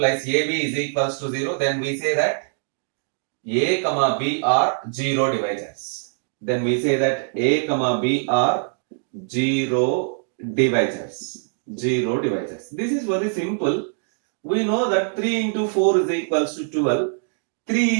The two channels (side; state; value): left; silent; digital silence